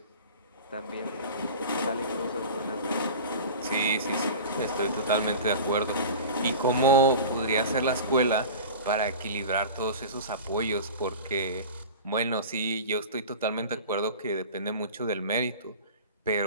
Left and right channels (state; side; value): inverted; both; correlation -0.35